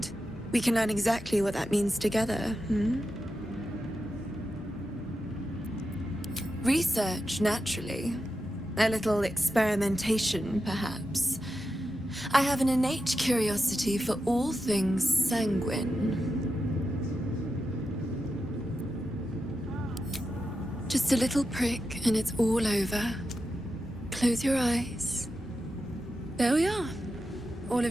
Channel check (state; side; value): normal; both; correlation 0.89